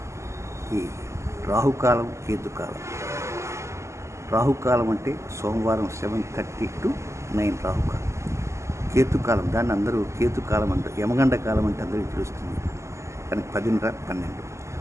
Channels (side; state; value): left; late; 0.13 ms